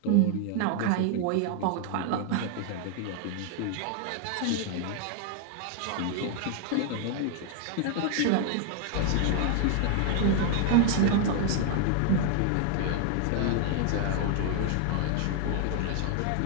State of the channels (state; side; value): different; both; correlation 0.00